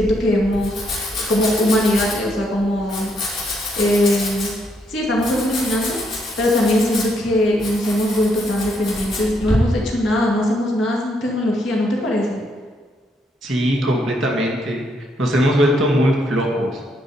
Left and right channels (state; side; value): normal; both; correlation 0.75